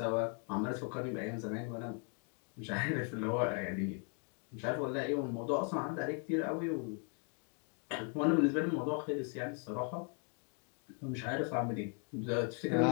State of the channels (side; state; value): right; quieter; 39.6 dB